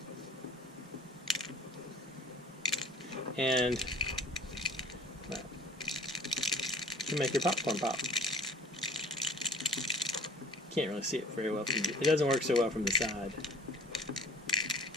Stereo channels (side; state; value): both; normal; correlation 0.47